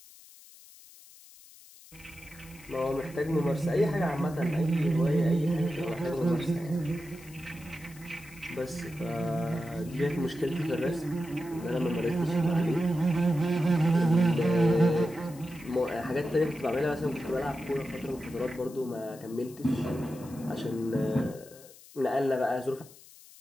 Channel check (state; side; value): noise; left; hiss, 21 dB below the sound